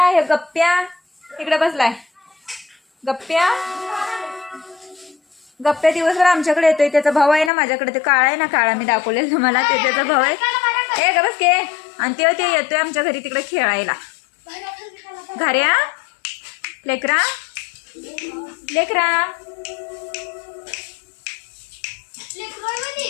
हे गप्प्या इकडे बसलाय. गप्प्या दिवसभर आमच्याकडे येतोय. त्याचा भाऊ आहे ना माझ्याकडे, ते काळा आहे ना, काळा मी दाखवलेलं तुम्हाला, ते त्याचा भाऊ आहे. ए गबस के. आणि ते येतोय आमच्या घरी तिकडे खेळायला. घाऱ्या लेकरा लेकरा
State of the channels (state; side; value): drops out; right; at 7.5 s